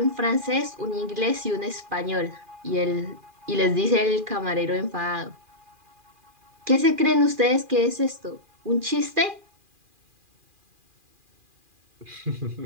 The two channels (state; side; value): late; left; 2.4 ms